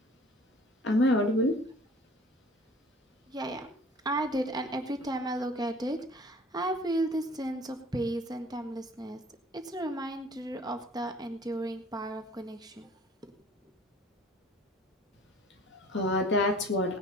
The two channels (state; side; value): normal; both; correlation 0.50